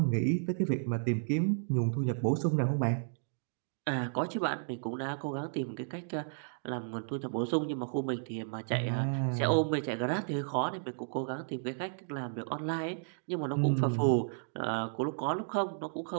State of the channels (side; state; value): left; silent; digital silence